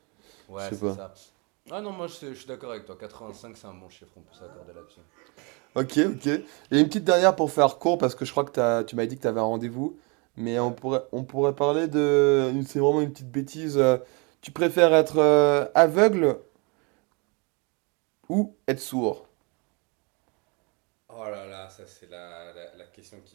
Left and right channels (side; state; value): left; quieter; 31.4 dB